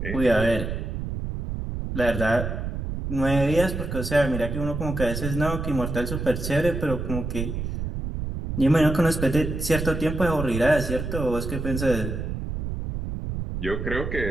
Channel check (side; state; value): right; noise; rumble, 4 dB below the sound